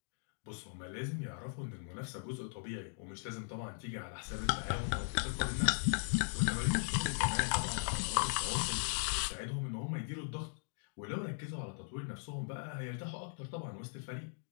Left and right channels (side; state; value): right; silent; digital silence